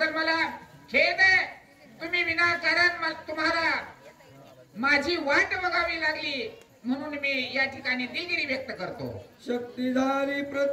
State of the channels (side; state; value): both; identical; correlation 1.00